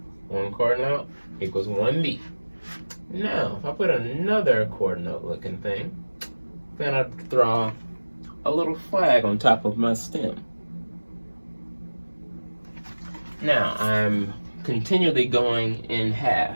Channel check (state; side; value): inverted; both; correlation -1.00